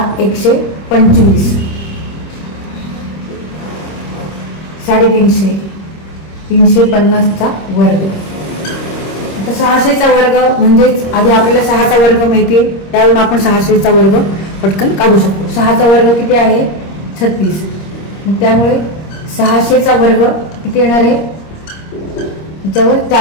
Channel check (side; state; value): right; late; 26 ms